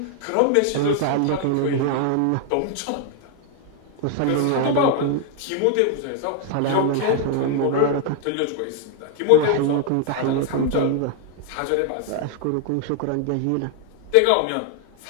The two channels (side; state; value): both; different; correlation 0.00